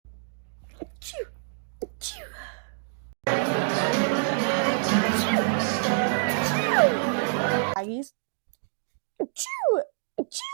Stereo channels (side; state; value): left; silent; digital silence